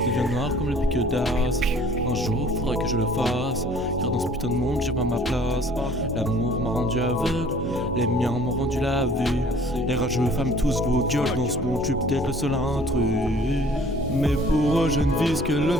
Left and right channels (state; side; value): normal; both; correlation 0.52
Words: Devient noir comme le pic d'as. Un jour, faudrait que je le fasse. Car dans ce putain de monde, j'ai pas ma place. L'amour m'a rendu aveugle. Les miens m'ont rendu la vue. Les rageux femmes tous vos gueules. Dans ce monde, je suis peut-être le seul intrus. Mais pour eux, je ne vise que le